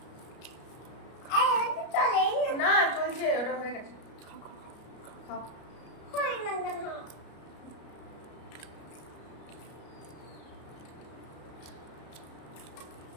না চলছে, ওটা হয়ে গেছে। খাও।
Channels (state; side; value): late; right; 33 ms